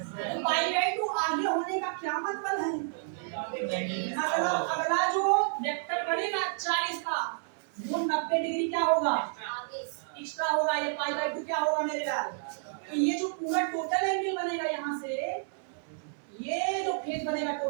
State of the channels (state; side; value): silent; left; 58 dB below the other